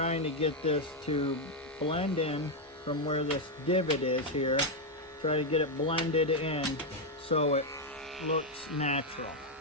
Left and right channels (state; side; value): normal; both; correlation 0.02